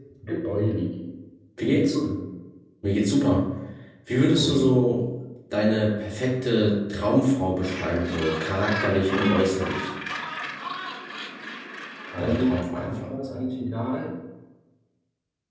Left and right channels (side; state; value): both; identical; correlation 1.00